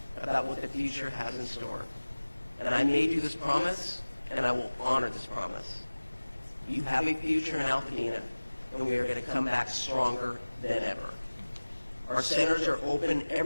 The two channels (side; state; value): both; inverted; correlation -1.00